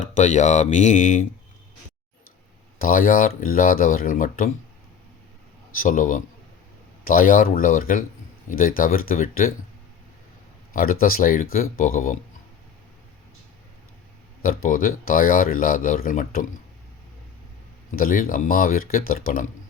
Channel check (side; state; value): right; quieter; 7.3 dB